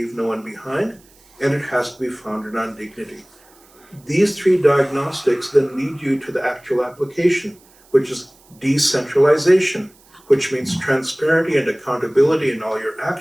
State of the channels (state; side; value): noise; right; hiss, 29 dB below the sound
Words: no one behind, and it has to be founded on dignity. These three diagnostics then lead you to the actual application, which is decentralization, which means transparency and accountability in all your